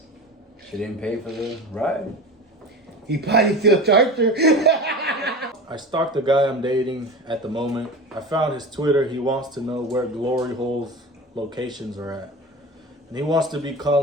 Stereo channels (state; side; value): normal; both; correlation 0.31